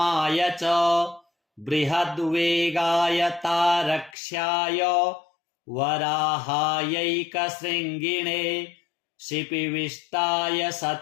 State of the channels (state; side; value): drops out; right; at 4.2 s